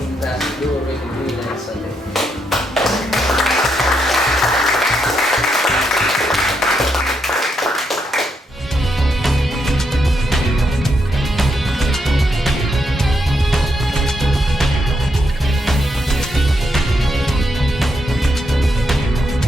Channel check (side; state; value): both; normal; correlation 0.80